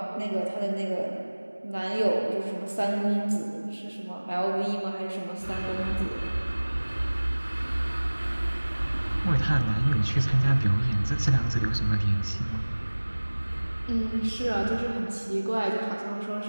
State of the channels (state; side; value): inverted; both; correlation -1.00